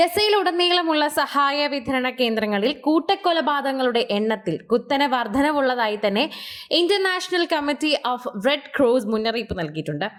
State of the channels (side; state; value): both; identical; correlation 1.00